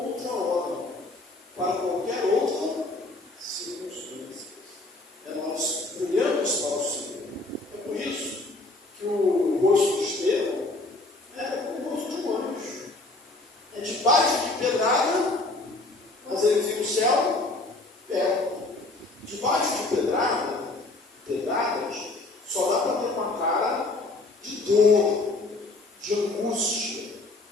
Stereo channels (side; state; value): right; quieter; 3.0 dB